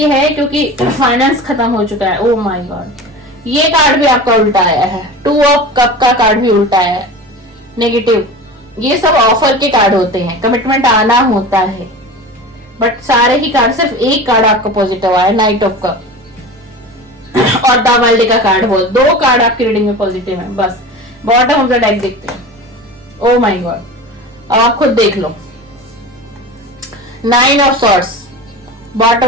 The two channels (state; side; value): normal; both; correlation 0.33